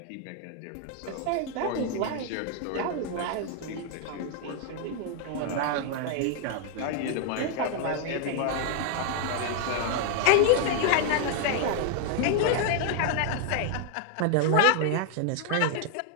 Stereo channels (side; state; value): both; different; correlation 0.00